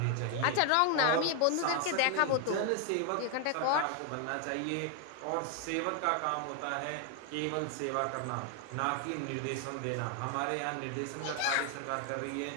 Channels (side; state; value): both; different; correlation 0.00